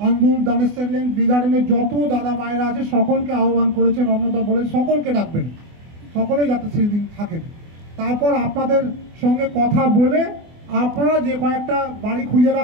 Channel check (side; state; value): left; late; 24 ms